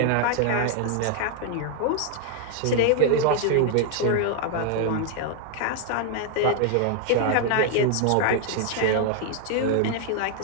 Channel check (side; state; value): both; different; correlation 0.00